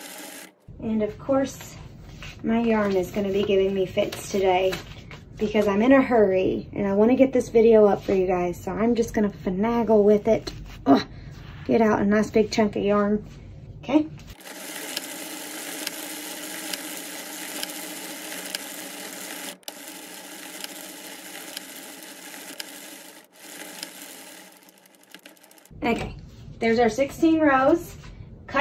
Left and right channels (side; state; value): both; identical; correlation 1.00